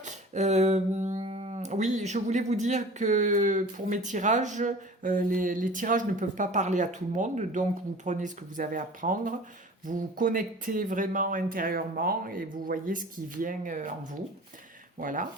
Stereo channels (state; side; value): normal; both; correlation 0.42